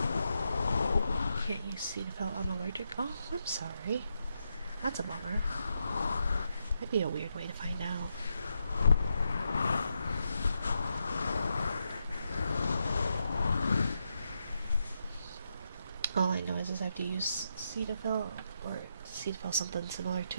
Can't use Cetaphil, I'm allergic. Oh, I'm sorry. That's a bummer. That'd be a weird way to find out. All I know is I have to use Cetaphil or Cetaphil something similar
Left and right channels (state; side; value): inverted; both; correlation -0.82